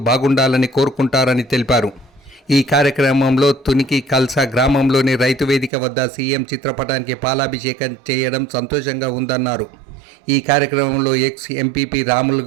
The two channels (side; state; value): left; drops out; at 5.7 s